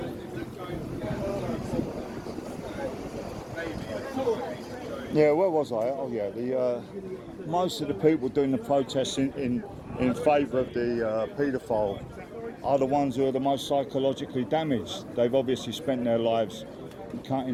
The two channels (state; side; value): identical; both; correlation 1.00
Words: Yeah, where was I? Oh yeah, most of the people doing the protests in favour of the paedophile are the ones who are the most psychologically damaged. They've obviously spent their lives